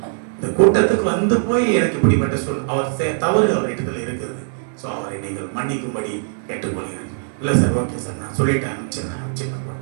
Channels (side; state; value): left; silent; digital silence